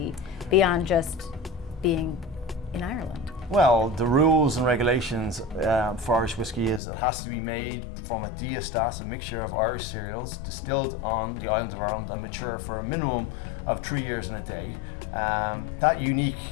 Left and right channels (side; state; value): right; drops out; at 6.8 s